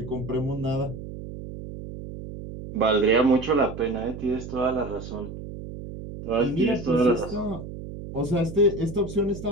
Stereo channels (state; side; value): noise; right; hum, 11 dB below the sound